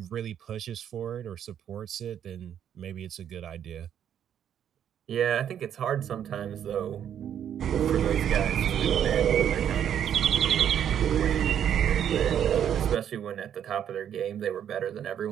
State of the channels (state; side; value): quieter; left; 9.4 dB